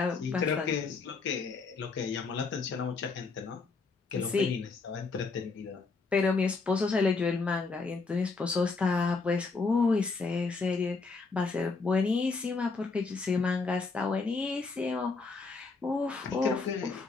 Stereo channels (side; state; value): right; quieter; 4.3 dB